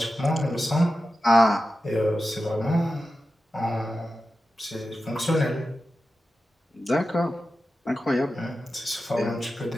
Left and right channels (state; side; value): normal; both; correlation 0.92